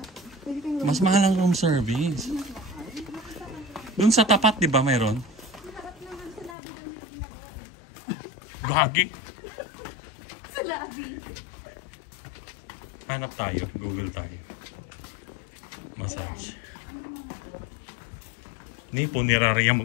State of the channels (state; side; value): drops out; right; at 6.6 s